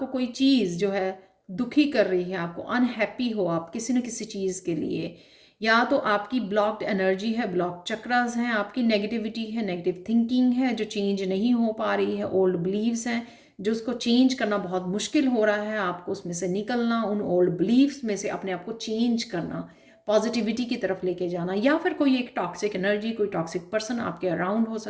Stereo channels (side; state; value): both; identical; correlation 1.00